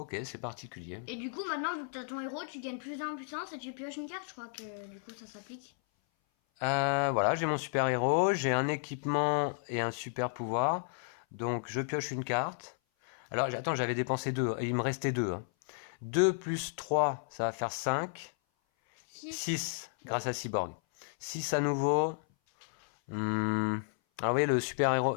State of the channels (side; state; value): right; silent; 56 dB below the other